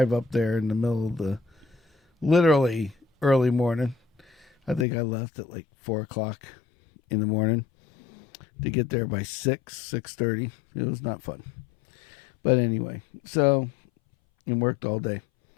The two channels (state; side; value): drops out; right; at 4.9 s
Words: up there in the middle of the literally early morning. I think I left at like 4:00 in the morning to get there by 6:30. It was not fun, but anyway. So, and worked all day.